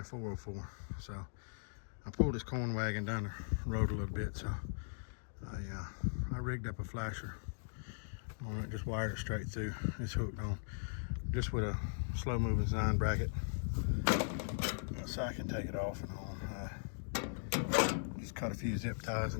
the 404. So I pulled this corn wagon down the road a little bit. So I rigged up a flasher on it, just wired it straight through. It's hooked on just with a slow moving sine bracket. So I can take it off and on. Just cut a few zip ties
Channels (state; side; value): silent; right; digital silence